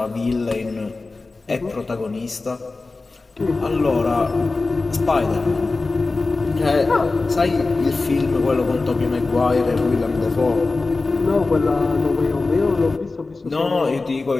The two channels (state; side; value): quieter; right; 3.6 dB